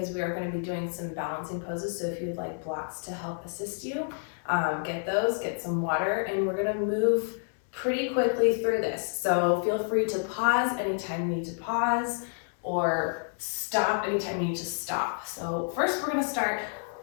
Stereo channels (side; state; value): right; silent; 58 dB below the other